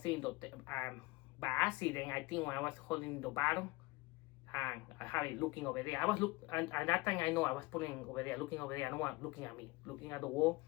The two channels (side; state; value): right; quieter; 22.5 dB